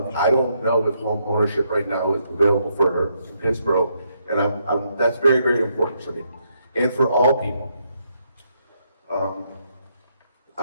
I don't know if home ownership right now is available for her in Pittsboro, and that's very, very important to me, and for all people.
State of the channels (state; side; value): inverted; both; correlation -0.77